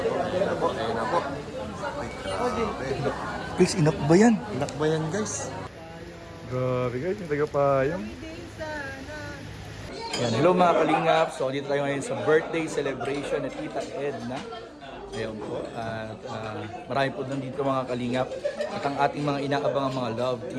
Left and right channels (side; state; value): both; identical; correlation 1.00